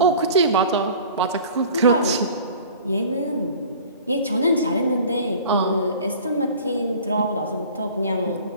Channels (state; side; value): inverted; both; correlation -0.44